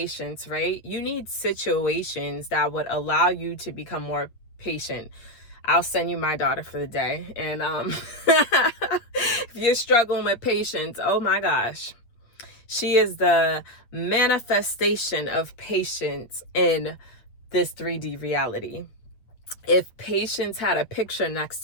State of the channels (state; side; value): late; right; 8.3 ms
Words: right? You need situations that would allow you to become more patient. I'll send you my daughter for the day. And if you're struggling with patience, oh my gosh. She is the manifestation of patience in this 3D reality. If patience had a picture next